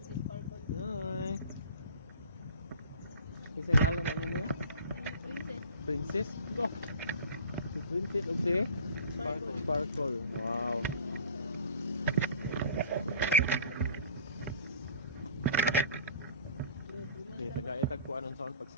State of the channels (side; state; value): both; inverted; correlation -0.42